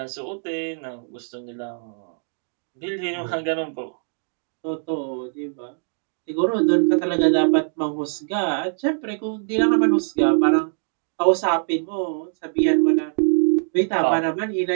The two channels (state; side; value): silent; left; digital silence